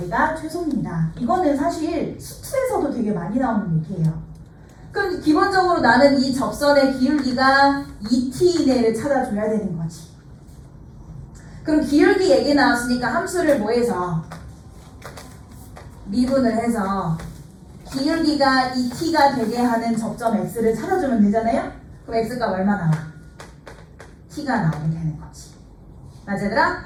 최소입니다. 이거는 사실 수투에서도 되게 많이 나오는 얘기예요. 그럼 기본적으로 나는 이 접선의 기울기가 2t 이내를 찾아줘야 되는 거지. 그럼 기울기 얘기 나왔으니까 함수를 뭐해서 미분을 해서 기울기가 2t가 되게 하는 접점 x를 찾아주면 되잖아요? 그럼 x가 얼마 나와? t가 나오게 되는 거지. 맞아 얘들아?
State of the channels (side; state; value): both; identical; correlation 1.00